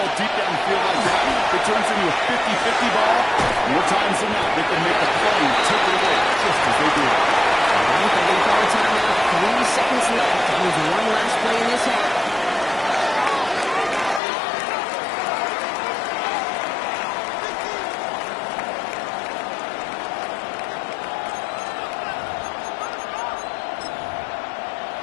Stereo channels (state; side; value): drops out; right; at 14.2 s